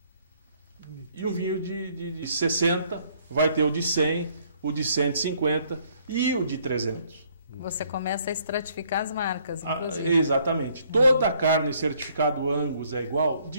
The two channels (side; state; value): both; inverted; correlation -0.65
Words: e um vinho de 60, vai ter o de 100, o de 150 e o de 300. Você começa a estratificar as marcas, inclusive. Exatamente. Toda a carne certificado Angus é igual?